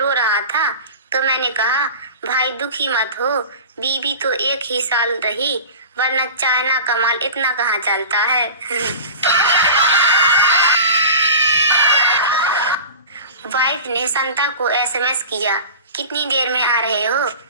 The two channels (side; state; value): both; inverted; correlation -0.35